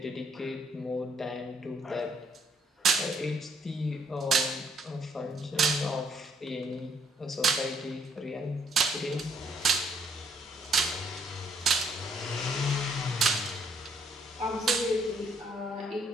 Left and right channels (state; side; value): normal; both; correlation 0.68